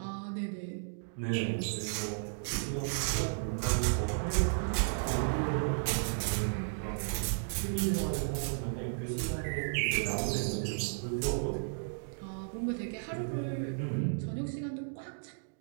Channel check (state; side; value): silent; left; digital silence